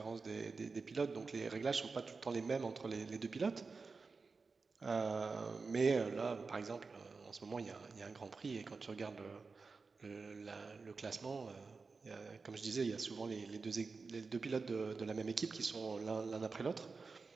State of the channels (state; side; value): quieter; left; 4.4 dB